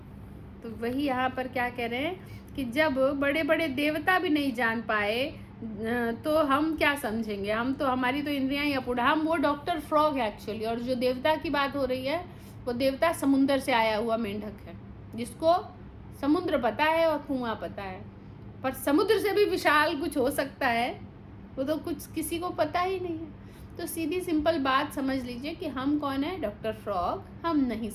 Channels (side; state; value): both; identical; correlation 1.00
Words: तो वही यहाँ पर क्या कह रहे हैं कि जब बड़े बड़े देवता भी नहीं जान पाए तो हम क्या समझेंगे। हम तो, हमारी तो इंद्रियां ही अपूर्ण। हम वो डॉक्टर फ्रॉग है एक्चुअली, और जो देवता की बात हो रही है वो देवता समुद्र से आया हुआ मेंढक है, जिसको समुद्र पता है और कुआं पता है। पर समुद्र से भी विशाल कुछ हो सकता है, वो तो कुछ किसी को पता ही नहीं है। तो सीधी सिंपल बात समझ लीजिए कि हम कौन है, डॉक्टर फ्रॉग, हम नहीं